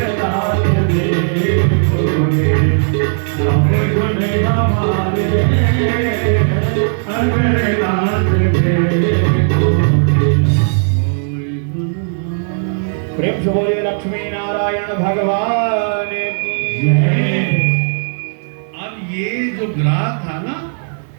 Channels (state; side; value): silent; left; 58 dB below the other